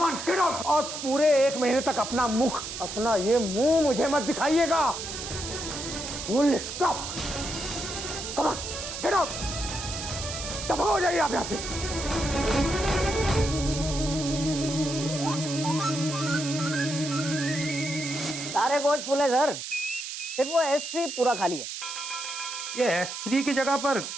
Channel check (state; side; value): noise; right; hiss, 7 dB below the sound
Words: on, get out. और पूरे 1 महीने तक अपना ये मुंह मुझे मत दिखाइएगा। Full stop. Come on, get out. दफा हो जाइए आप यहाँ से। सारे कोच फुल है सर, सिर्फ वो S3 पूरा खाली है। ये S3 की जगह पर